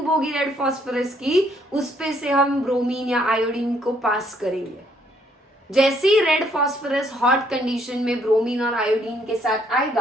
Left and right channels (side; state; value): both; normal; correlation 0.68